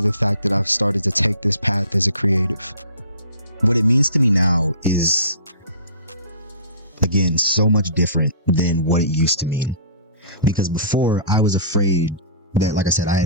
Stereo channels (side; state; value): both; inverted; correlation -0.41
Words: the fact that I've started to take this path as a creative. What it means to me now is, again, so much different than what it used to mean. Because before, I was afraid that, like I said, I